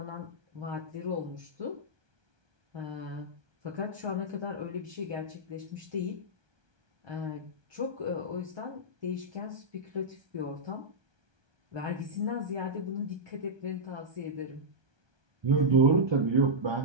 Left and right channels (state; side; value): late; left; 1.3 ms